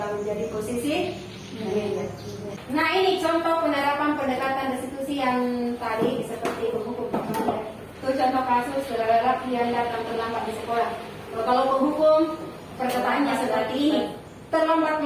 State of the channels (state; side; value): identical; both; correlation 1.00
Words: menjadi posisi manajer. Nah, ini contoh penerapan pendekatan restitusi yang tadi seperti penghukum. Itu contoh kasus lelaki yang datang terlambat di sekolah. Kalau penghukum perkataannya seperti ini, terlambat